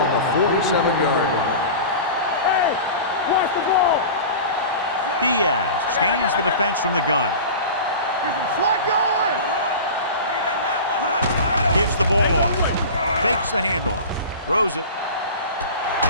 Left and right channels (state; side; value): inverted; both; correlation -0.34